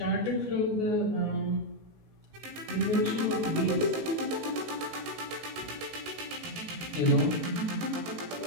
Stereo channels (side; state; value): left; late; 19 ms